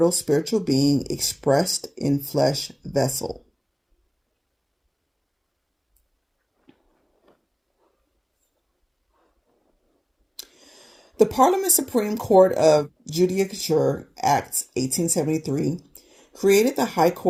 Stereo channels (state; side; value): identical; both; correlation 1.00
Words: spiritual being expressed in flesh vessel. The Parliament Supreme Court of Judicature Act 1873 created the High